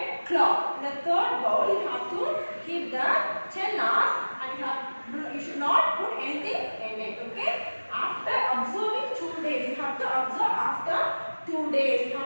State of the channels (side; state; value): both; inverted; correlation -1.00